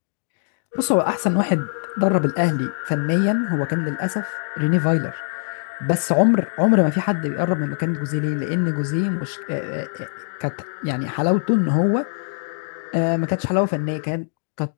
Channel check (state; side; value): silent; right; digital silence